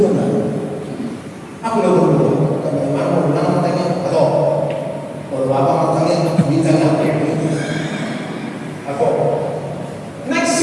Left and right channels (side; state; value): both; identical; correlation 1.00